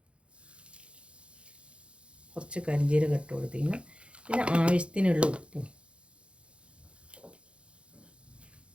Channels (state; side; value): late; left; 0.059 ms